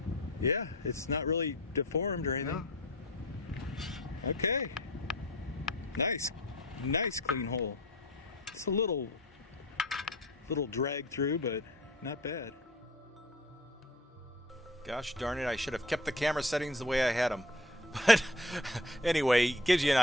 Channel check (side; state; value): both; normal; correlation 0.44